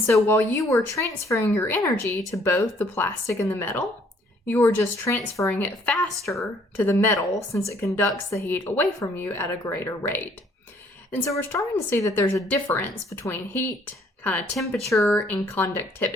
so while you were transferring your energy to both the plastic and the metal, you are just transferring it faster to the metal since it conducts the heat away from you at a greater rate. And so we're starting to see that there's a difference between heat, kind of temperature, and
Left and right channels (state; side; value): normal; both; correlation 0.62